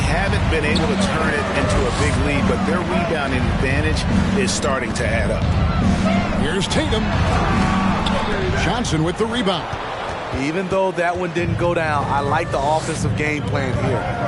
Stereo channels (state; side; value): identical; both; correlation 1.00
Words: been able to turn it into a big lead, but their rebounding advantage is starting to add up. Here's Tatum. Johnson with the rebound. Even though that one didn't go down, I like the offensive game plan